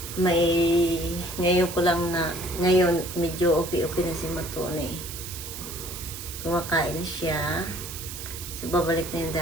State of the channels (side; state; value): right; noise; hiss, 10 dB below the sound